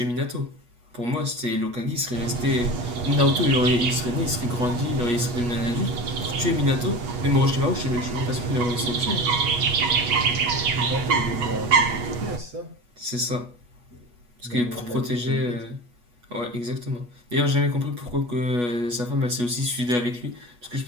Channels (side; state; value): left; late; 8.3 ms